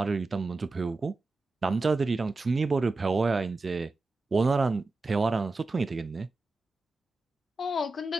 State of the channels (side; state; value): left; quieter; 3.3 dB